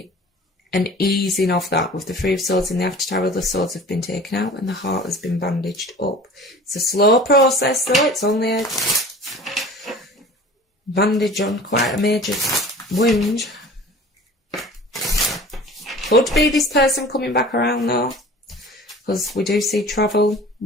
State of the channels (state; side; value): normal; both; correlation 0.42